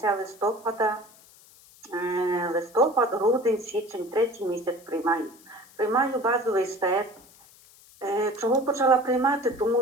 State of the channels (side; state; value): left; noise; hiss, 25 dB below the sound